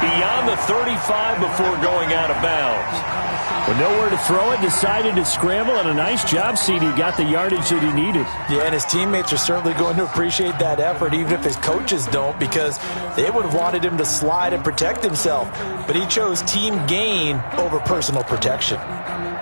the 35 before going out of bounds. With nowhere to throw it, decided to scramble, and a nice job, CD. Got the yardage that he needed. Yeah, and his teammates are certainly going to appreciate that effort, even if his coaches don't, because they would have wanted him to slide and protect himself. But he chose team gain over personal protection.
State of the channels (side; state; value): both; inverted; correlation -1.00